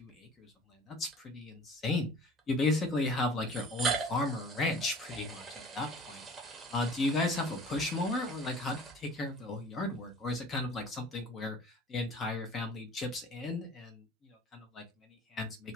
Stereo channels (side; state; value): both; normal; correlation 0.46